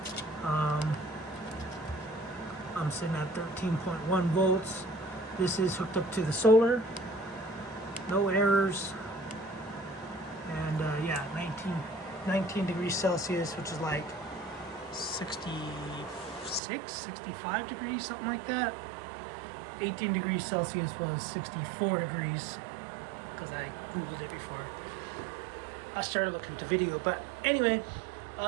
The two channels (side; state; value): left; drops out; at 16.6 s